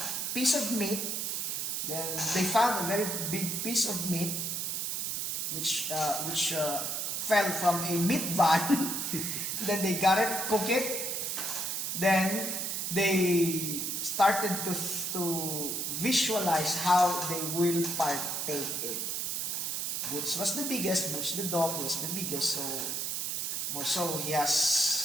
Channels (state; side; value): noise; right; hiss, 1 dB below the sound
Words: piece of meat. Then they found a very big piece of meat which fell from a meat van. Then they got it, cook it. Then they started to visualize how they will partake it. Boots was the biggest. Boots the dog was the biggest. So more so, he